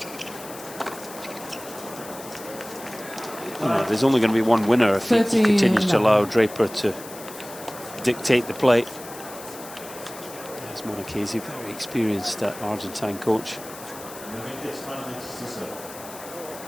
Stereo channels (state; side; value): noise; left; hiss, 15 dB below the sound